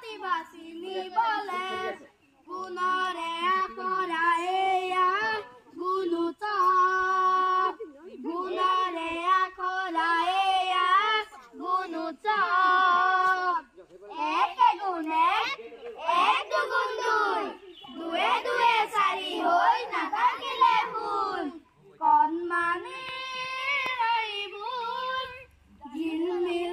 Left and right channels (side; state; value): both; identical; correlation 1.00